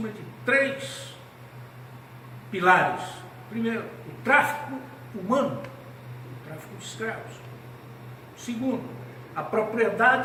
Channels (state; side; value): identical; both; correlation 1.00